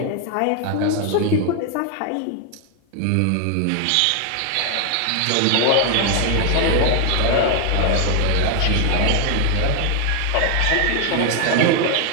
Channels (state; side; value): different; both; correlation 0.00